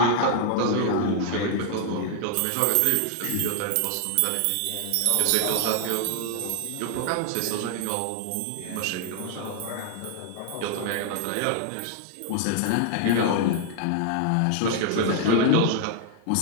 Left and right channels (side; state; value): both; different; correlation 0.00